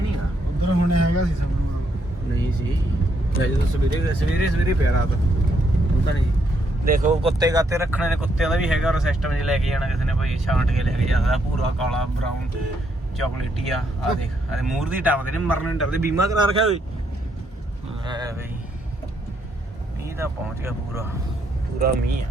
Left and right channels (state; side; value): normal; both; correlation 0.75